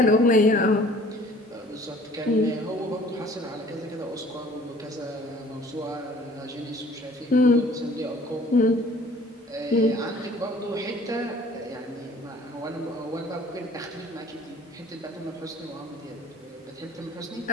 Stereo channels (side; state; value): both; normal; correlation 0.52